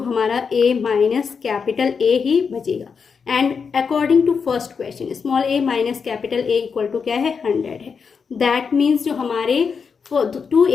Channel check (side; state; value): right; quieter; 5.8 dB